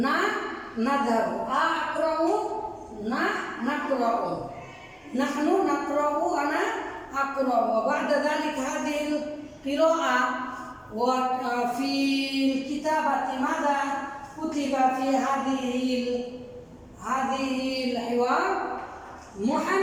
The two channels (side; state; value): both; identical; correlation 1.00